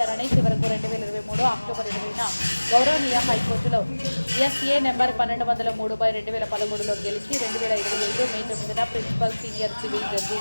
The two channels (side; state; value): both; inverted; correlation -1.00